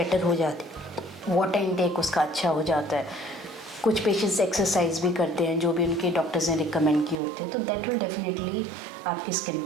हो जाती, वाटर इनटेक उसका अच्छा हो जाता है। कुछ पेशेंट्स एक्सरसाइज भी करते हैं जो भी उनके डॉक्टर्स ने रिकमेंड किए होते हैं, तो दैट विल डेफिनेटली आपकी स्किन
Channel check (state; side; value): drops out; left; at 7.2 s